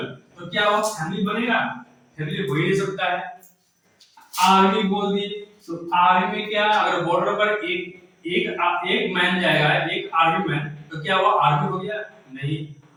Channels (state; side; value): identical; both; correlation 1.00